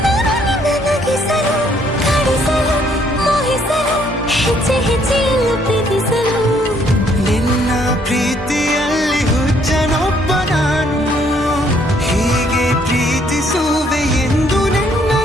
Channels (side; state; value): both; normal; correlation 0.66